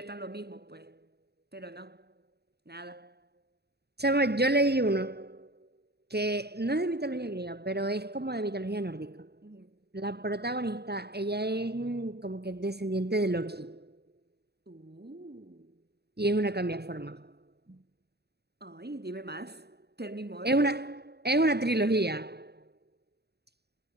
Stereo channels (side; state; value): left; late; 0.48 ms